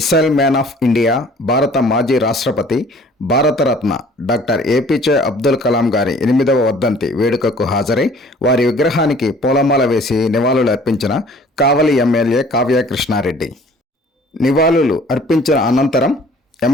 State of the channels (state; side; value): normal; both; correlation 0.52